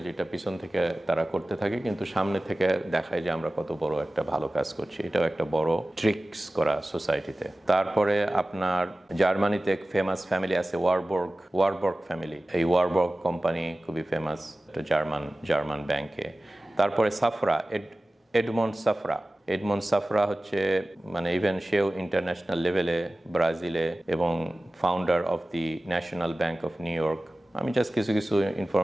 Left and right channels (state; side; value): normal; both; correlation 0.97